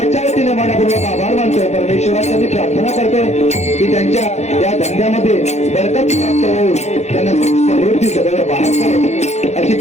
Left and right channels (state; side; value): late; right; 0.32 ms